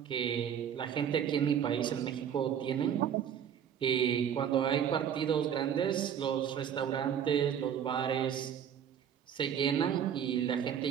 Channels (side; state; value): left; quieter; 8.8 dB